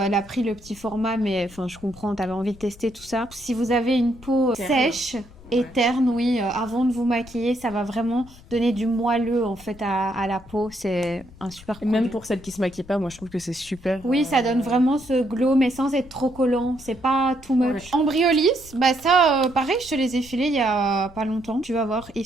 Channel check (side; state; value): left; noise; rumble, 21 dB below the sound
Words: elle a pris le petit format, mais enfin, je comprends, t'avais envie de tester tout ça. Si vous avez une peau Terne. sèche... et terne, oui, avant de vous maquiller, ça va vraiment donner du moelleux en fait à la peau. C'est un super Et produit. même pour celles qui se maquillent pas, moi je trouve que c'est super. Oui, ça donne vraiment ce glow, mais sans être trop collant. C'est pas too much. Ouais. Embryolis, bah ça, pareil, je te les ai filés il y a pas longtemps. Tu vas voir, ils